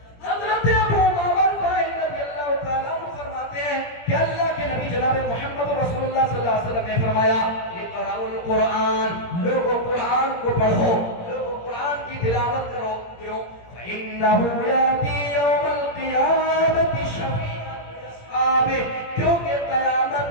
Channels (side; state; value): right; late; 17 ms